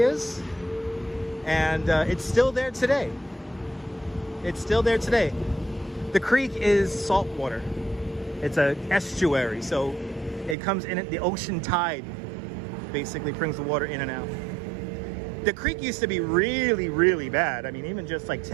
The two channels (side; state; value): left; drops out; at 10.6 s